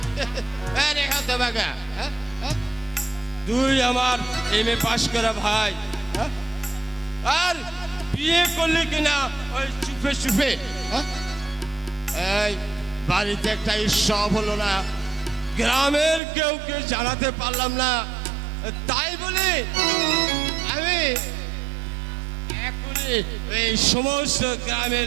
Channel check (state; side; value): drops out; left; at 16.2 s